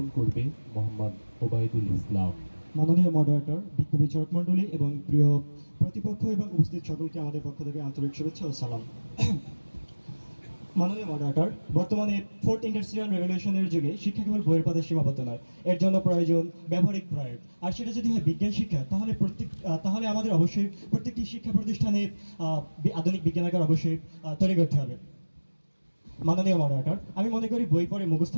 করবে মোহাম্মদ ওবায়দুল ইসলাম। মাননীয় মডারেটর, বিজ্ঞ বিচারক মণ্ডলী এবং প্রিয় প্রতিপক্ষ এবং উপস্থিত সকলকে আমাদের পক্ষ থেকে আন্তরিক শুভেচ্ছা ও সালাম। মাননীয় মডারেটর, বর্তমানে ফোর্থ ইন্ডাস্ট্রিয়াল রেভলিউশনের যুগে শিক্ষা কেবল বইয়ের পথে সীমাবদ্ধ নয়, এর জন্য প্রয়োজন ব্যবহারিক প্রয়োগ। আর সেটা যদি হয় বিজ্ঞান শিক্ষা, তাহলে আমাদের অবশ্যই প্রত্যেকটি শিক্ষা প্রতিষ্ঠানে আধুনিক বিজ্ঞানাগার অবশ্যই তৈরি করতে হবে। মাননীয় মডারেটর, আমি মনে করি বই পড়ে মুখস্থ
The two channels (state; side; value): inverted; both; correlation -1.00